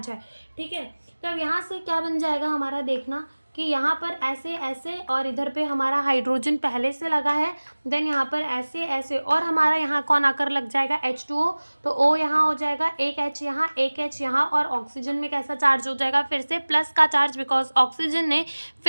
है, ठीक है। तो अब यहाँ से क्या बन जाएगा हमारा, देखना कि यहाँ पर ऐसे ऐसे, और इधर पे हमारा हाइड्रोजन पहले से लगा है, देन यहाँ पर ऐसे ऐसे, और हमारा यहाँ कौन आकर लग जाएगा, H2O। तो O यहाँ हो जाएगा, एक H यहाँ, एक H यहाँ, और ऑक्सीजन में कैसा चार्ज हो जाएगा, फिर से प्लस का चार्ज, बिकॉज ऑक्सीजन ने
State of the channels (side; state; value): both; inverted; correlation -1.00